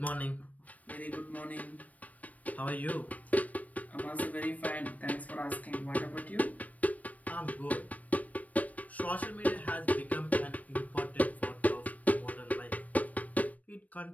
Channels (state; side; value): late; right; 0.072 ms